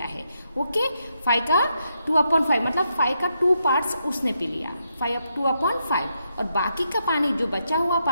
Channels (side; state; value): both; inverted; correlation -0.81